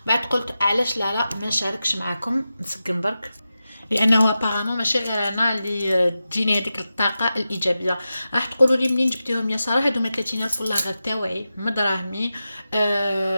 بعد قلت علاش لا ما نشاركش معاكم، نسقم برك. لانه ابارامون ماشي غير انا اللي تجيني هذيك الطاقه الايجابيه. راح تقولوا لي منين جبتيهم يا ساره؟ هادو 30,000 والله غير تاوعي من دراهمي.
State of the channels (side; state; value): both; inverted; correlation -0.92